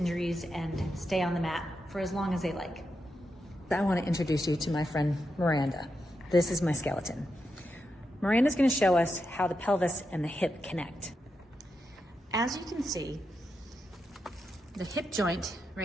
and stay on the mat for as long as they like. I want to introduce you to my friend Miranda. This is my skeleton. Miranda's going to show us how the pelvis and the hip connect. As you can see, the hip joint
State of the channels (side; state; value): both; normal; correlation 0.86